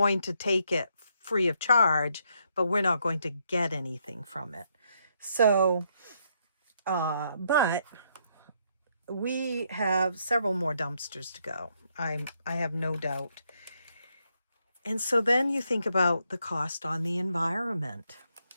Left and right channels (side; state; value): both; inverted; correlation -0.75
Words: to take it free of charge, but we're not going to get anything from it. So, but we have several more dumpsters to go. I have no doubt. And so then you think about the cost on the environment,